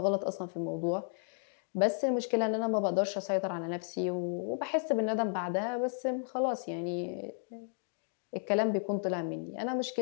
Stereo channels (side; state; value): right; silent; 56 dB below the other